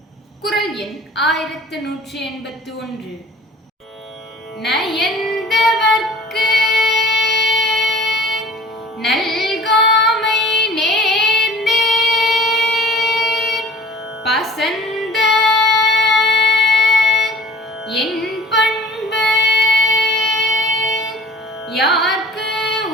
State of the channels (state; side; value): normal; both; correlation 0.47